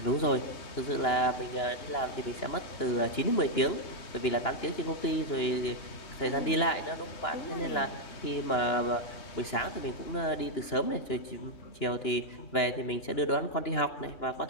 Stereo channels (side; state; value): right; late; 2.9 ms